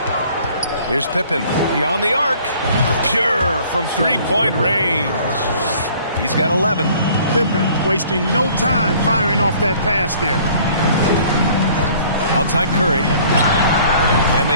Here's Pippen beyond the arc. Pure from three-point range. He's got 11. Pippen wasting no time firing off that pass there. Outside Curry. And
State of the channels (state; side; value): inverted; both; correlation -0.54